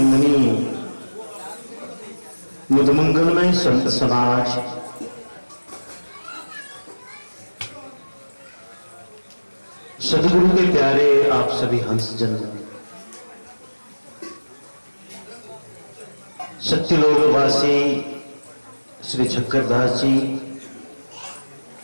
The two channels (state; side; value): inverted; both; correlation -1.00